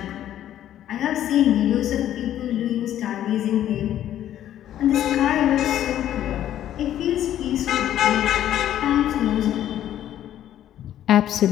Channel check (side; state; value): right; quieter; 11.6 dB